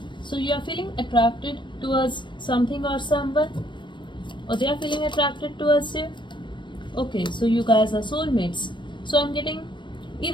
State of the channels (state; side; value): late; right; 0.23 ms